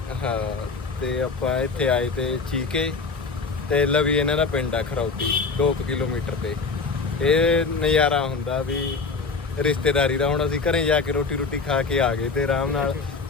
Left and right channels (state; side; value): quieter; right; 4.4 dB